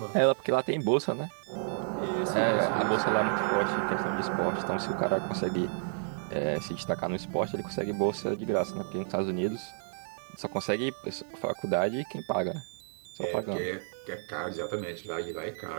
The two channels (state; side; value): silent; left; digital silence